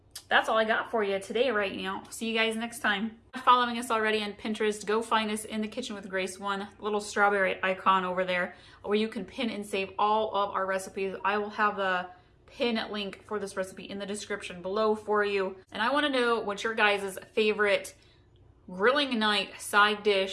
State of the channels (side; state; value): both; identical; correlation 1.00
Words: that's all I got for you today right now. See you guys next time. If you're following us already on Pinterest, go find us in the Kitchen with Grace one, little strawberry icon over there where you can pin and save all of our recipes. I will have the pin link for this recipe in the description below for you. And I want to know what your guys' favorite grilling night side